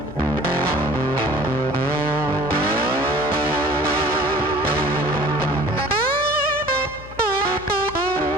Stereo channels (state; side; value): noise; left; hum, 16 dB below the sound